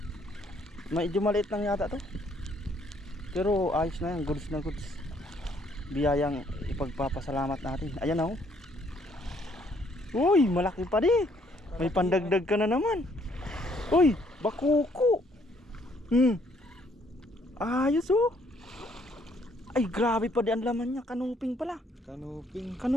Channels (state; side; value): normal; both; correlation 0.66